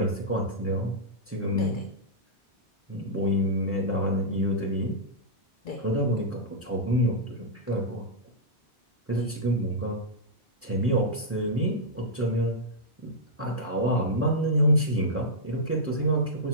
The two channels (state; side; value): normal; both; correlation -0.10